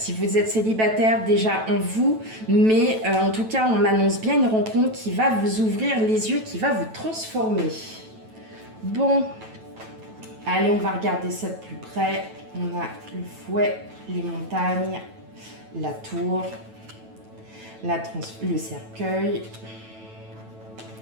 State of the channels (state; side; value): late; left; 9.1 ms